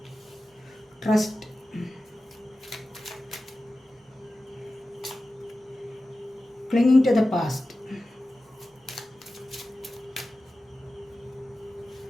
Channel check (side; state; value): both; normal; correlation 0.94